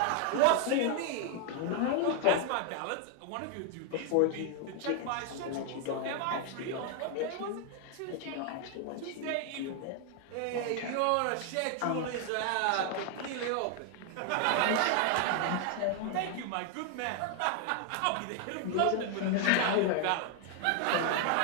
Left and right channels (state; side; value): different; both; correlation 0.00